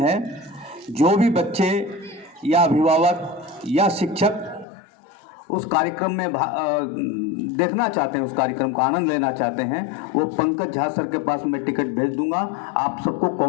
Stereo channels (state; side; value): drops out; right; at 4.7 s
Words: जो भी बच्चे या अभिभावक या शिक्षक उस कार्यक्रम में देखना चाहते हैं, उस कार्यक्रम का आनंद लेना चाहते हैं, वो पंकज झा सर के पास मैं टिकट भेज दूंगा। आप सबको